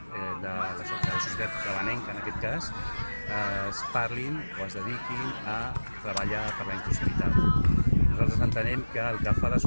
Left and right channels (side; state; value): both; inverted; correlation -1.00